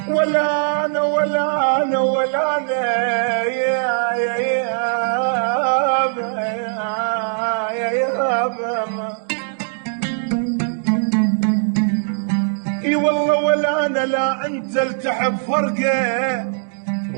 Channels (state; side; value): silent; left; digital silence